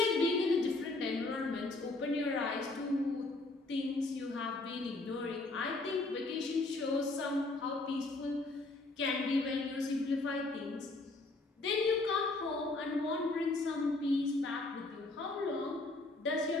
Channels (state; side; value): quieter; right; 3.1 dB